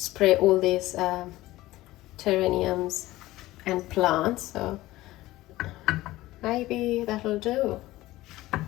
all these terrariums and plants. So maybe that'll do.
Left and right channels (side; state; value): right; quieter; 17.3 dB